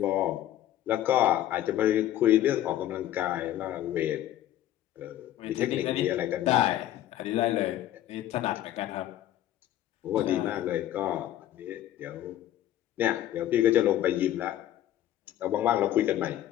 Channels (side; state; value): right; quieter; 12.8 dB